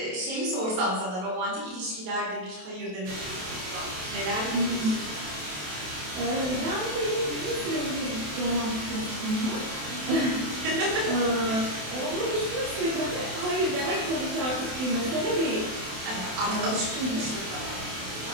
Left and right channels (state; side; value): late; left; 27 ms